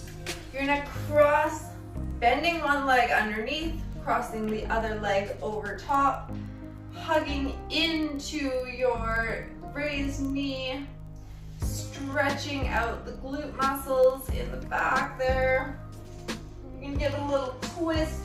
You're gonna cross, bending one leg underneath, crossing the other leg over top, hugging into your raised knee, stretching out the glute muscles in the back there. You can get a little twist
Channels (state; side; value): identical; both; correlation 1.00